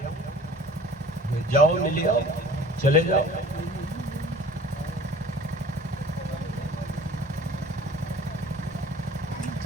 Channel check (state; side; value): normal; both; correlation 0.46